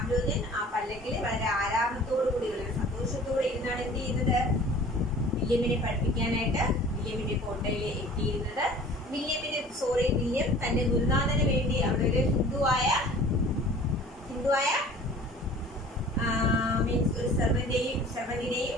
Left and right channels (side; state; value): both; normal; correlation 0.46